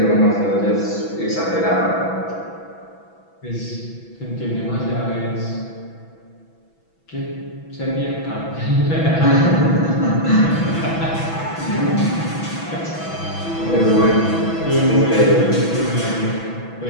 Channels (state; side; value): late; right; 6.1 ms